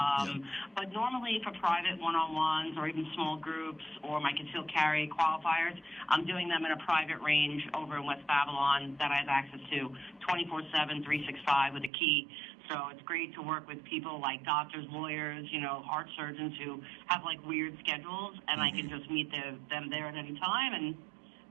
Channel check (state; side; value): drops out; left; at 11.9 s